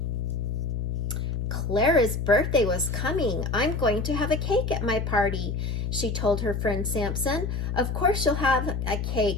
Clara's birthday was coming. I'm going to have a cake at my party, she told her friend Samson. Of course you'll have a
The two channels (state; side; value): noise; left; hum, 2 dB below the sound